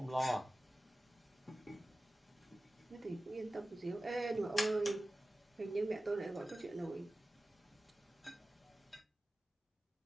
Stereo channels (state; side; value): normal; both; correlation 0.96